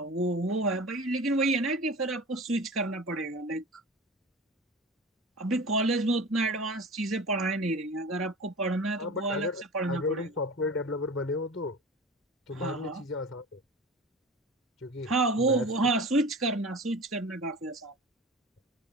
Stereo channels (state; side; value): normal; both; correlation 0.35